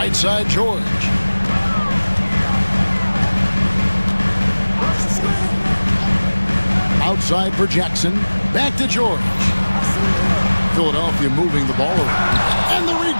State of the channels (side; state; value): both; inverted; correlation -1.00